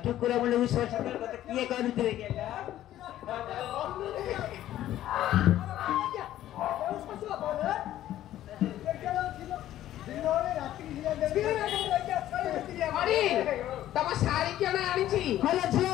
ଟୁକୁରା ମୁଣ୍ଡକୁ ସଚ କଥା କିଏ କରୁଥିଲେ କେଲା ଅରି ତମ ଶାଢ଼ୀ କିଣ ଆଣିଛି ହେଲା ଝିଅ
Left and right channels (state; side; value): quieter; right; 13.0 dB